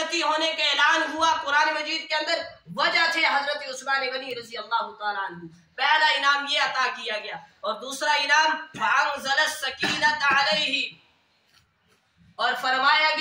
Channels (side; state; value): both; identical; correlation 1.00